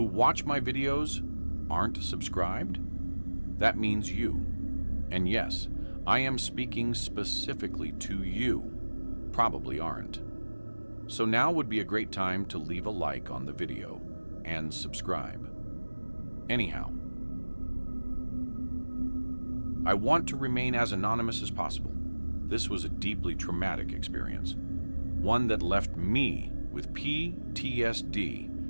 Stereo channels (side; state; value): both; inverted; correlation -1.00